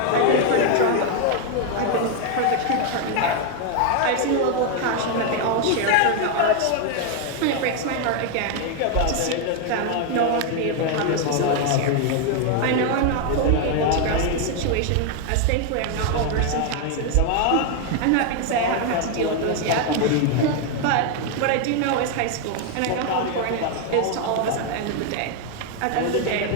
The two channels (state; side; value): different; both; correlation 0.01